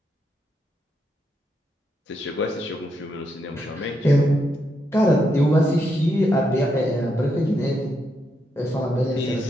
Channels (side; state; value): both; normal; correlation 0.80